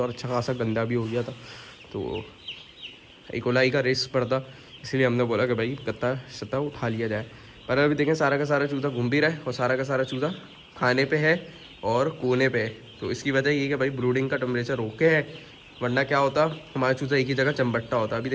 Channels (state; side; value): identical; both; correlation 1.00